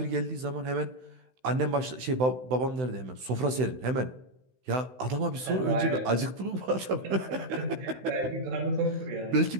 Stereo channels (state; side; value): late; left; 16 ms